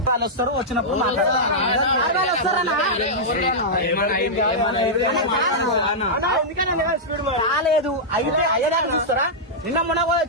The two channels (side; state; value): both; normal; correlation -0.09